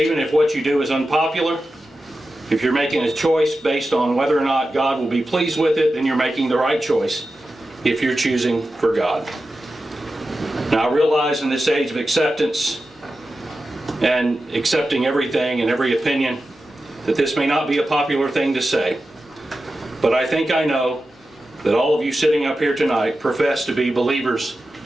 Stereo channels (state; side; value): normal; both; correlation 0.92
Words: if what you do is unpopular, if you're making a choice based on whether or not God will be pleased with it, then you're making the right choice if you're choosing for God. Now I realize in this age of acceptance and accepting everything and every opinion that this may not be a popular thing to say, but I think I know that all of you sitting up here tonight profess to be believers